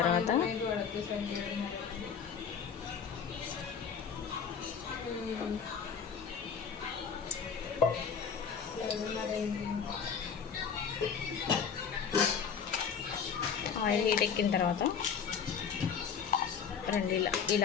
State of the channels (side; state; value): right; quieter; 6.7 dB